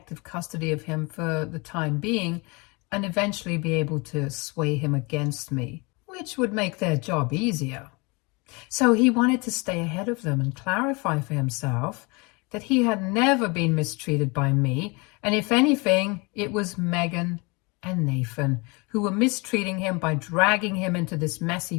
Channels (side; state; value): right; quieter; 28.2 dB